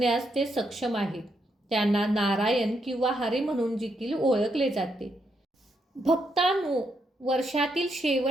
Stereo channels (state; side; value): normal; both; correlation 0.79